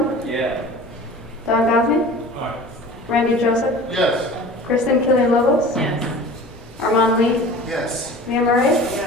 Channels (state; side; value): normal; both; correlation 0.40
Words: Yeah. Don Gosney? Aye. Randy Joseph? Yes. Kristen Killian Lobos? Yes. Armand Lee? Yes. Mia Murray?